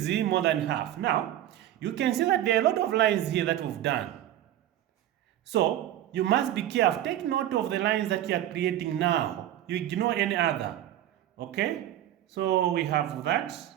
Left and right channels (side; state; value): left; quieter; 12.4 dB